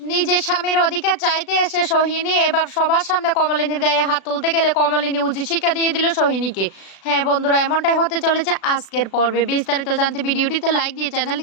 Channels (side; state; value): right; late; 36 ms